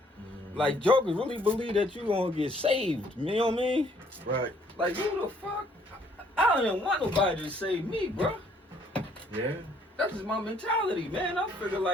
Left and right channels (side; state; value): both; normal; correlation 0.64